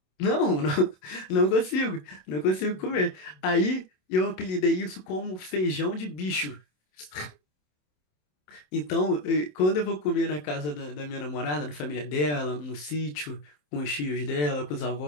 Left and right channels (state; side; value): late; right; 27 ms